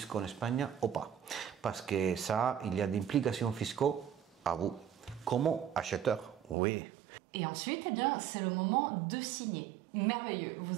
en Espagne ou pas. Parce que ça, il y a des implications fiscales à vous, comme acheteur, oui. Et ensuite, eh bien, c'est le moment de signer. Merveilleux,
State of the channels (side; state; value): left; drops out; at 6.6 s